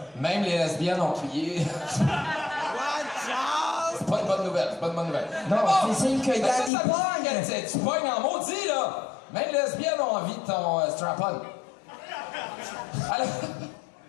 Même les lesbiennes ont crié. C'est pas une bonne nouvelle, c'est pas une bonne nouvelle. Non, c'est signe que Yann il pogne. Tu pognes en maudit, là. Même les lesbiennes ont envie de ton strap-on. Alors...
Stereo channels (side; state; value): right; drops out; at 6.7 s